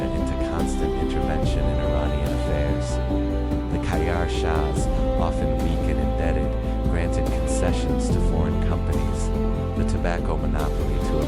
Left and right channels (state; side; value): identical; both; correlation 1.00